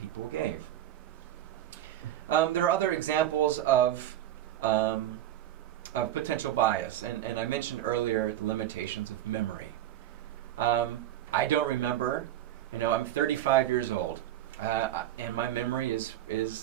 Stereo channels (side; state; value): left; quieter; 12.4 dB